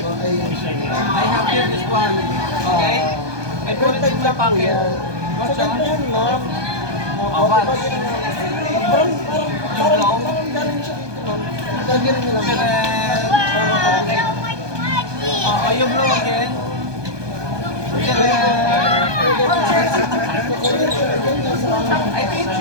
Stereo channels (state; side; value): late; left; 1.2 ms